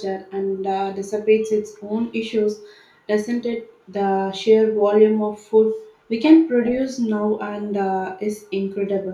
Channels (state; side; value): identical; both; correlation 1.00